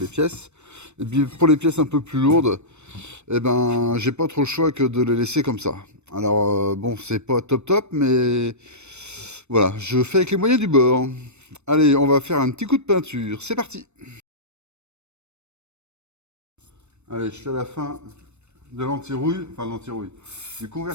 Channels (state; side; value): late; left; 0.82 ms